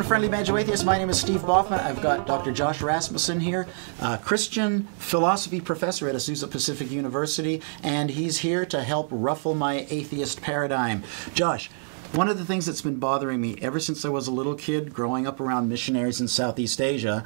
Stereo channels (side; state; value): left; silent; digital silence